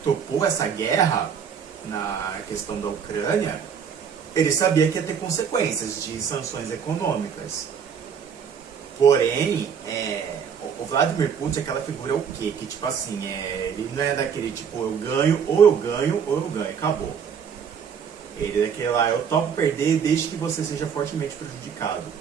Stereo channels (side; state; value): left; quieter; 7.2 dB